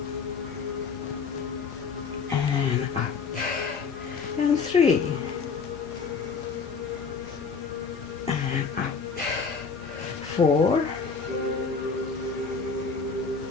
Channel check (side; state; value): right; quieter; 5.3 dB